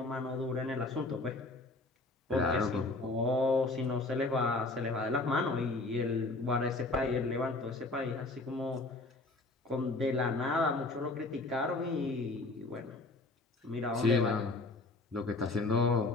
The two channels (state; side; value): quieter; right; 3.1 dB